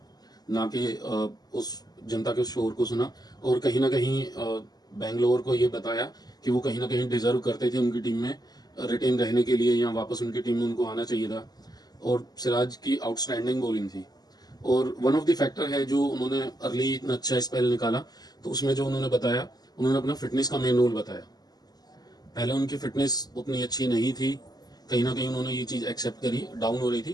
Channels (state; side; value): late; right; 0.19 ms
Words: ना कि उस जनता के शोर को सुना। और कहीं ना कहीं बेंगलोर को ये बताया कि वो कहीं ना कहीं डिजर्व करते थे उनकी टीम में रिटेन रहने के लिए, या वापस उनकी टीम में उनको आना चाहिए था। और सिराज की आउटस्टैंडिंग बॉलिंग थी, और वन ऑफ द फैक्टर है जो उन्होंने अर्ली इतना अच्छा स्पेल निकाला। तो उसमें जो उन्होंने बताया, उन्होंने अपना फिटनेस का मेन रोल बताया। पहले उनकी फिटनेस उतनी अच्छी नहीं थी, कहीं ना कहीं उन्होंने ये चीज़ एक्सेप्ट करी, डाउन हो रही